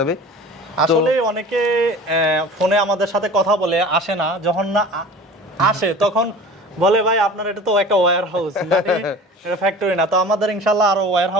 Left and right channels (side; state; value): both; normal; correlation 0.40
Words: আসলে অনেকে ফোনে আমাদের সাথে কথা বলে আসে না, যখন না আসে তখন বলে ভাই আপনার এটা তো একটা ওয়্যার হাউস, এটা ফ্যাক্টরি না। তো আমাদের ইনশাআল্লাহ আরো ওয়্যার